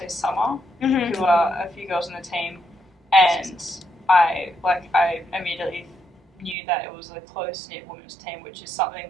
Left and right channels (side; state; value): left; drops out; at 6.6 s